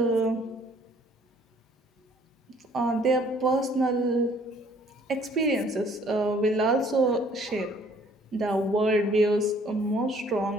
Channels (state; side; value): normal; both; correlation 0.59